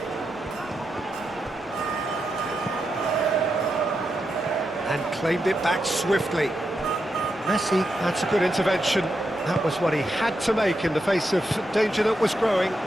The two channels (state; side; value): normal; both; correlation 0.85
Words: And claimed it back swiftly. Messi, that's a good intervention. That was what he had to make in the face of danger that was growing.